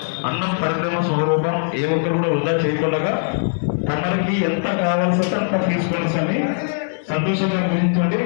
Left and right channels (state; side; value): silent; right; digital silence